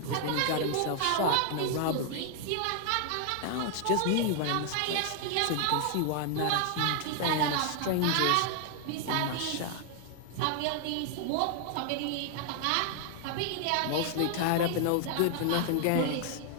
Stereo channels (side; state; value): both; different; correlation 0.00